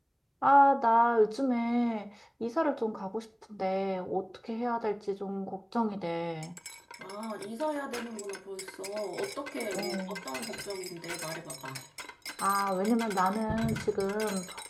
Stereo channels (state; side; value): identical; both; correlation 1.00